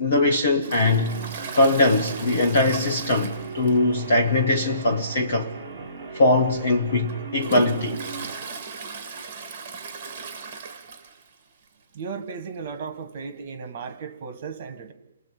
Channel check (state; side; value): inverted; both; correlation -0.58